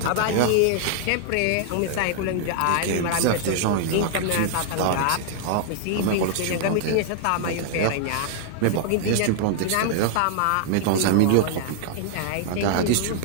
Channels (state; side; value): different; both; correlation -0.01